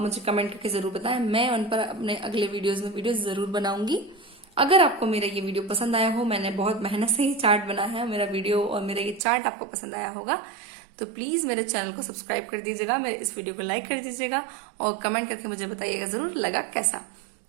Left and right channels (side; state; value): left; drops out; at 9.2 s